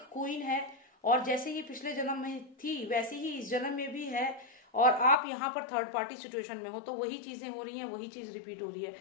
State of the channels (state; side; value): drops out; right; at 5.2 s